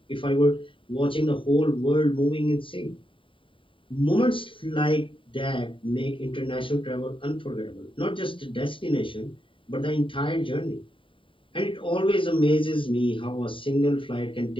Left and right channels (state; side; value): late; right; 0.25 ms